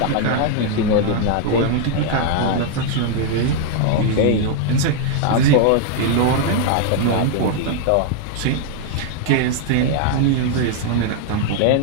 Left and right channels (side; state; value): both; different; correlation 0.00